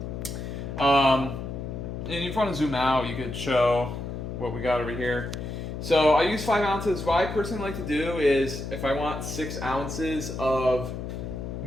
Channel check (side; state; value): left; noise; hum, 6 dB below the sound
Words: And if you want to zoom out, you could show what we got over here. So I use 5 ounces. What I personally like to do is, if I want 6 ounces of